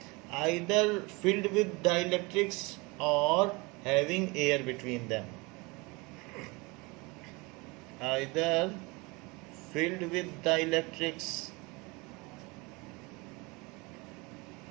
either filled with dielectrics or having air between them, either filled with dielectrics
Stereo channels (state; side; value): quieter; left; 25.4 dB